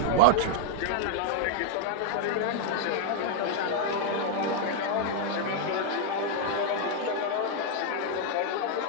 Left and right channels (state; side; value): different; both; correlation 0.00